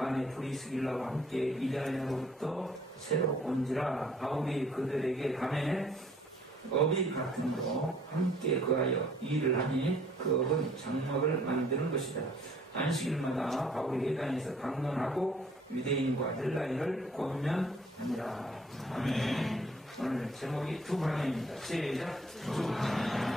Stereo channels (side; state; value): both; normal; correlation 0.59